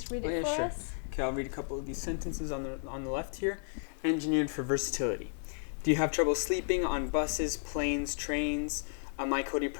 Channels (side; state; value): right; silent; digital silence